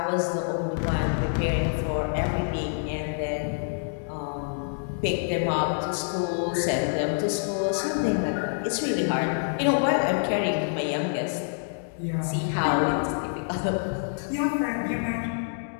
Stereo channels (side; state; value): right; silent; digital silence